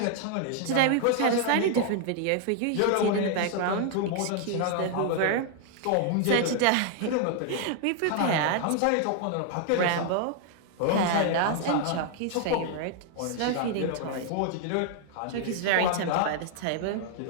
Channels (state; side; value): different; both; correlation 0.00